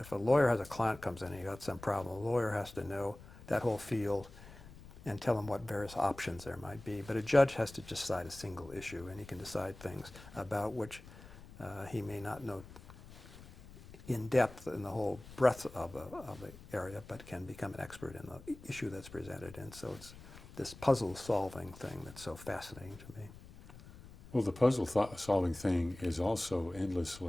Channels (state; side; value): noise; left; rumble, 18 dB below the sound